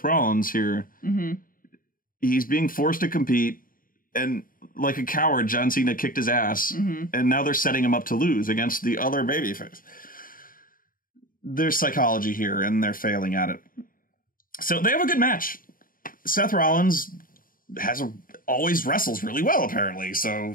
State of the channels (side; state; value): right; late; 0.41 ms